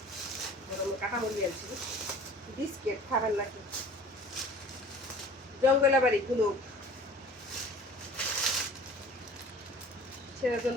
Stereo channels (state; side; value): normal; both; correlation 0.45